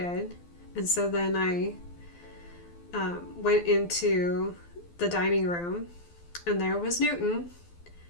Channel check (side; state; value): right; late; 12 ms